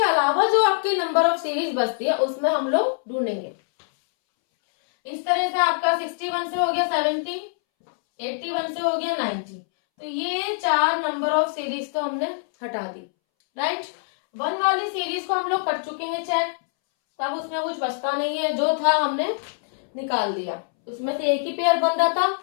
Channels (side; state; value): right; silent; 63 dB below the other